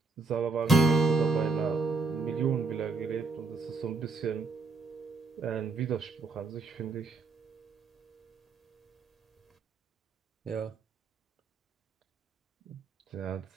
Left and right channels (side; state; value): left; quieter; 3.9 dB